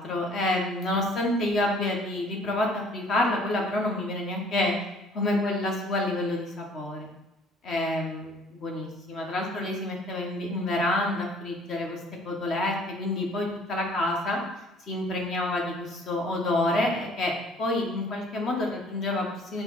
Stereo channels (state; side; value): normal; both; correlation 0.55